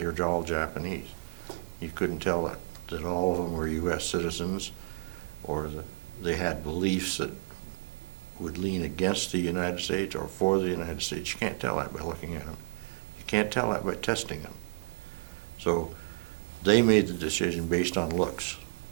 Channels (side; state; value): left; silent; 57 dB below the other